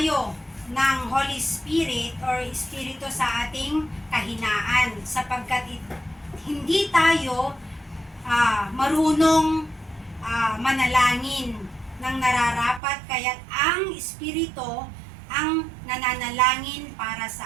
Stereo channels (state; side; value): drops out; left; at 12.8 s